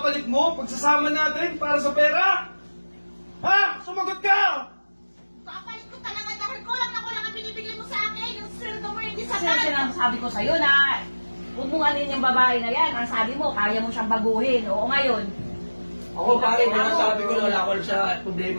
mo, pagsasama natin para sa pera? Ha? Sumagot ka! Papalit ko talaga dahil kulang ang binibigay mo sa akin. Yung sweldo mo hindi Kasi sapat. sinasabi ko sa'yo na huwag mong alin yung babae na yan. Ang sabi mo, kaya mo siyang baguhin. Oo ngayon. Ako, pare, sabi ko na wala ako alam sa problema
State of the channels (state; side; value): inverted; both; correlation -1.00